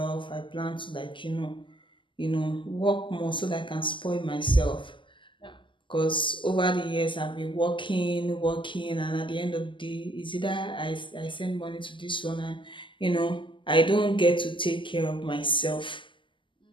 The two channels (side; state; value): right; late; 0.24 ms